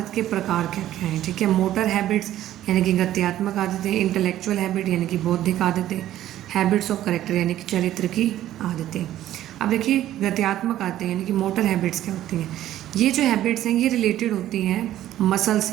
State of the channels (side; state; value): left; quieter; 13.0 dB